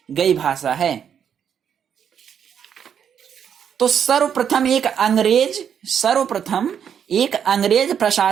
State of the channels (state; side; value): quieter; left; 8.2 dB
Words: गई भाषा है। तो सर्वप्रथम एक अंग्रेज